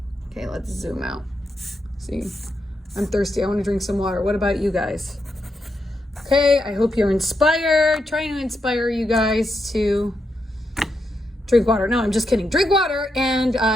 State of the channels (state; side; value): normal; both; correlation 0.83